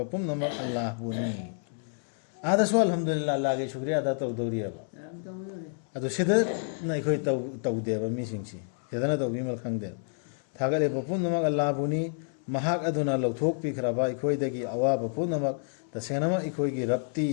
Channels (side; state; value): right; silent; 59 dB below the other